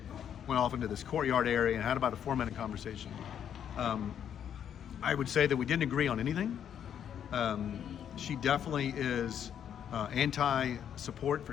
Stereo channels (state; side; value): quieter; right; 9.1 dB